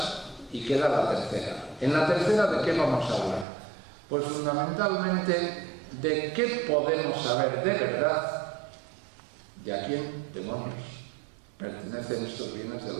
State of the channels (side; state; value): left; drops out; at 3.5 s